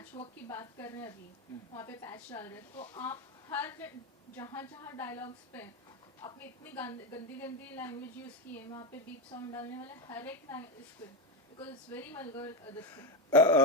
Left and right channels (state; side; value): normal; both; correlation 0.12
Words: वर्क की बात कर रहे हैं अभी, वहाँ पे पैच डाल रहे हैं, तो आप हर जहाँ डायलॉग्स पे आपने इतनी गंदी लैंग्वेज यूज की है, वहाँ पे बीप साउंड डालने वाले हर एक इस पे, because it's very vulgar this